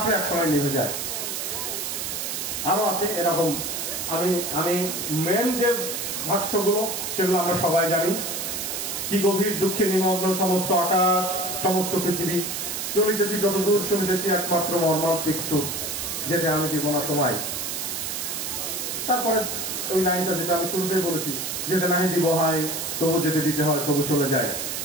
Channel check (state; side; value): noise; right; hiss, 4 dB below the sound